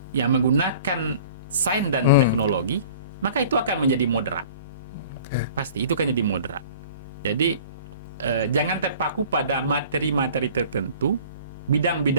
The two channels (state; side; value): inverted; both; correlation -0.47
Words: yang menggunakan sains dan teknologi, maka itu akan menjadi moderat. Pasti itu akan jadi moderat. Jadi jangan terpaku pada materi-materi tertentu,